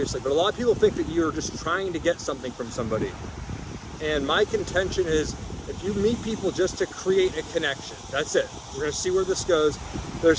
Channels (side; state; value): both; identical; correlation 1.00